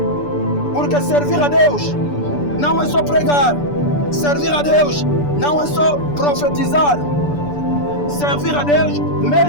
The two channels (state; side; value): late; right; 6.9 ms